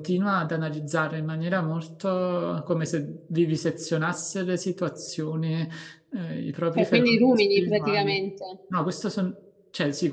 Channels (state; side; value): identical; both; correlation 1.00